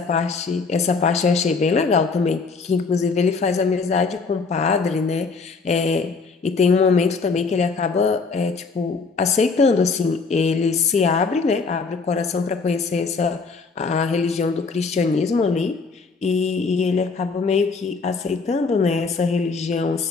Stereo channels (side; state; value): right; quieter; 4.5 dB